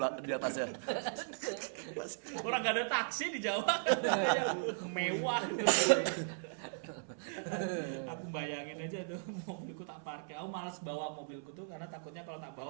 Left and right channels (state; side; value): silent; left; 53 dB below the other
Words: di atasnya. Orang gak ada taksi di Jawa. Mewah. Aku bayangin aja tuh mobilku tak parkir. Aku malas bawa mobilku tuh karena takutnya kalau tak